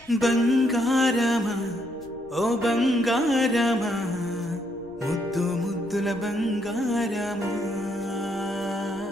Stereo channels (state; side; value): noise; left; rumble, 26 dB below the sound